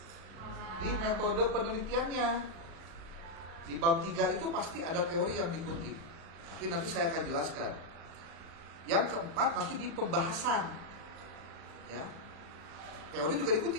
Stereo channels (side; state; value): left; late; 36 ms